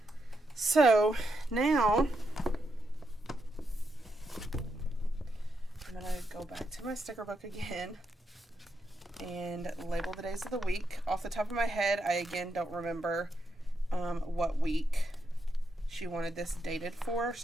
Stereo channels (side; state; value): both; normal; correlation 0.82